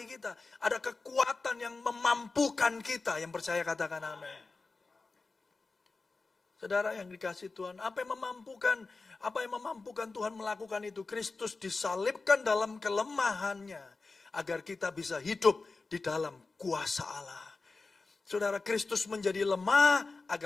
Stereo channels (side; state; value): right; quieter; 3.9 dB